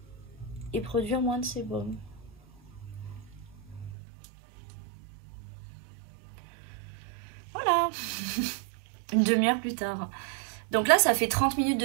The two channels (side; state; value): left; drops out; at 4.0 s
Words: et produire moins de sébum. Voilà. Une demi-heure plus tard. Donc là, ça fait 30 minutes